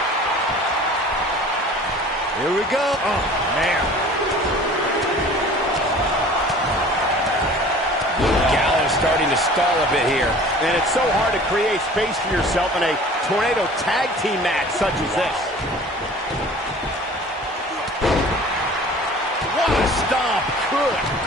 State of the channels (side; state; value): both; normal; correlation 0.45